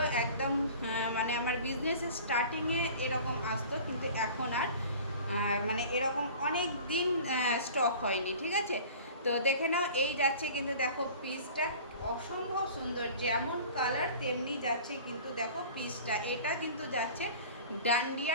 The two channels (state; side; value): inverted; both; correlation -0.43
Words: একদম মানে আমার বিজনেসের স্টার্টিংয়ে এরকম আসতো, কিন্তু এখন আর মানে এরকম অনেক দিন স্টক হয়নি। ঠিক আছে, তো দেখে নাও। এই যাচ্ছে কিন্তু দেখো পিসটা অসম্ভব সুন্দর, যেমন কালার তেমনি যাচ্ছে কিন্তু দেখো পিসটা। এটা কিন্তু যাচ্ছে